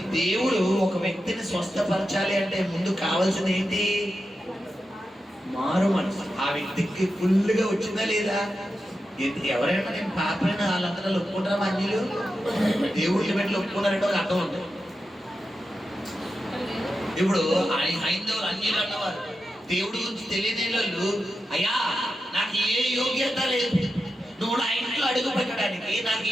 దేవుడు ఒక వ్యక్తిని స్వస్థపరచాలి అంటే ముందు కావాల్సింది ఏంటి? మారు మనసు. ఆ వ్యక్తికి ఫుల్గా వచ్చిందా లేదా? ఎవరైనా నేను పాపైన వాళ్ళందరూ ఒప్పుకుంటారా? అన్యులు దేవుడిని పెట్టి ఒప్పుకున్నారంటే ఒక అర్థం ఉంటుంది. ఇప్పుడు హైందవులు అన్యులు అన్నవారు దేవుడి గురించి తెలియని వాళ్ళు, అయ్యా నాకు ఏ యోగ్యత లేదు, నువ్వు నా ఇంట్లో అడుగు పెట్టడానికి నాకు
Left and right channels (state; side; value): normal; both; correlation 0.90